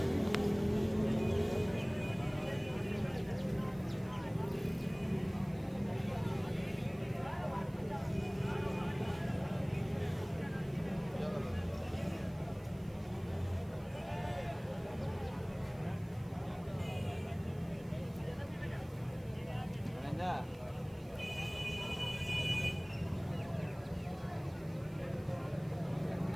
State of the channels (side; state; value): right; noise; hiss, 27 dB below the sound